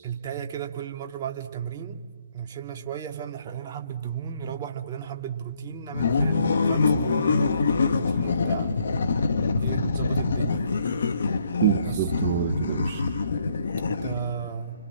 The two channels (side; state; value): both; inverted; correlation -0.68